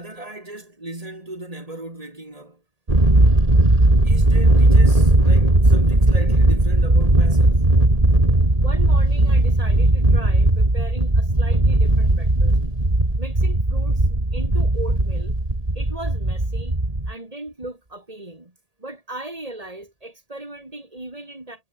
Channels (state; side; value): late; left; 1.8 ms